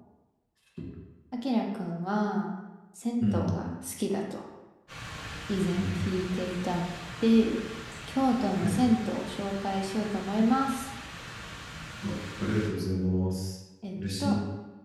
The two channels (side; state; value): both; identical; correlation 1.00